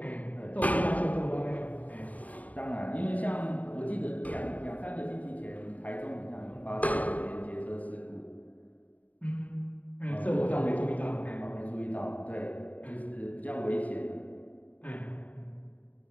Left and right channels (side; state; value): right; late; 0.073 ms